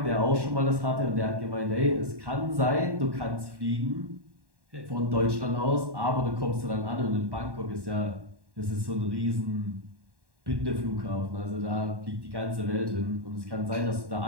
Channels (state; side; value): late; left; 1.1 ms